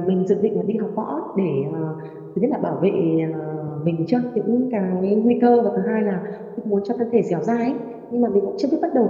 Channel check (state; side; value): identical; both; correlation 1.00